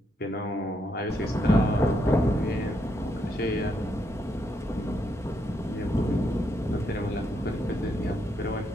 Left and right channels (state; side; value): normal; both; correlation 0.78